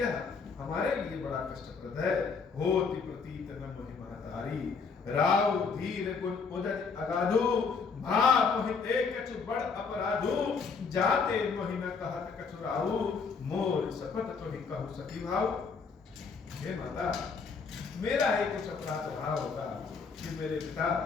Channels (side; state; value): right; quieter; 5.2 dB